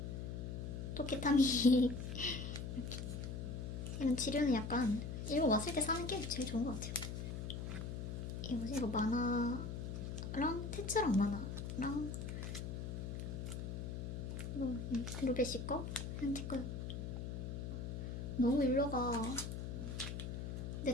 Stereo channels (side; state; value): left; noise; hum, 5 dB below the sound